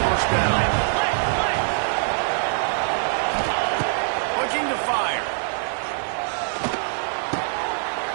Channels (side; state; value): left; silent; 63 dB below the other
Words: first down. Looking to fire.